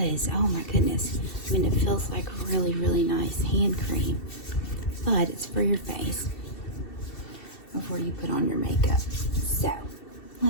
Oh my goodness. I mean, it feels like really, really nice hand cream, but it's for your face before you put on your makeup. So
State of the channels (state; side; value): late; right; 2.7 ms